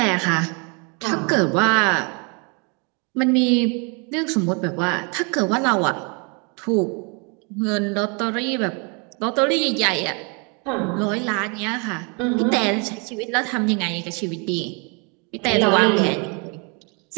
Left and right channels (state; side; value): quieter; left; 33.6 dB